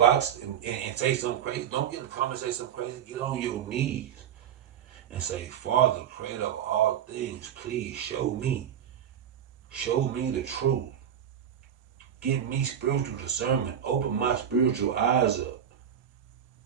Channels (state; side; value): quieter; left; 9.3 dB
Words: and say something crazy. Don't get in the comments and say something crazy. Get on your knees and say, Father, creator of all things, please show me. Show me the truth. Give me spiritual discernment. Open my spiritual eyes up.